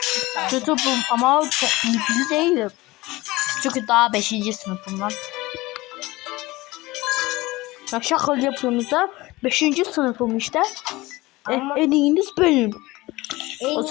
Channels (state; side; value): quieter; right; 20.3 dB